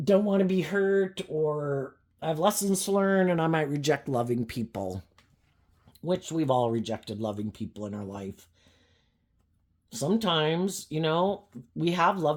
don't want to be hurt, or I have lessons to learn, and I might reject loving people, which we've all rejected loving people in our life. Sometimes, we have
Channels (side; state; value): both; identical; correlation 1.00